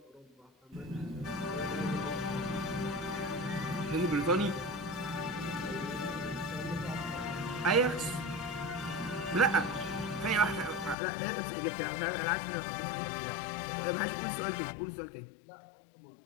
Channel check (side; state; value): right; drops out; at 11.0 s